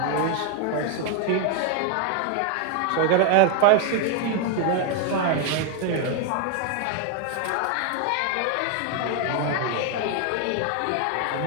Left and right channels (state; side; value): different; both; correlation 0.01